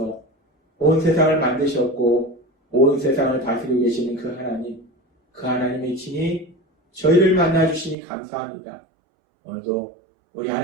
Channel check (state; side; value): drops out; left; at 8.0 s